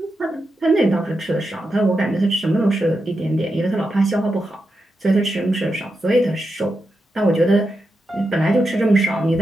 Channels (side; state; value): both; normal; correlation 0.87